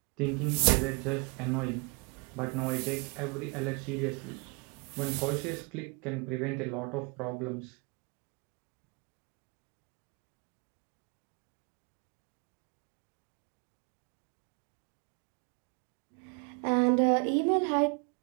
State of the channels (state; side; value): quieter; left; 31.5 dB